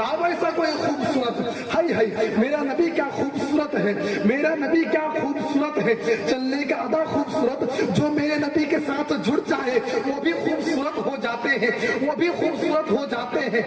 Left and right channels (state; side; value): identical; both; correlation 1.00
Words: ایسا کوئی خوبصورت۔ ہائی ہائی میرا نبی کیا خوبصورت ہے، میرا نبی کیا خوبصورت ہے، چلنے کا ادا خوبصورت، جو میرے نبی کے ساتھ جڑ جائے وہ بھی خوبصورت ہو جاتے ہیں، وہ بھی خوبصورت ہو جاتے ہیں۔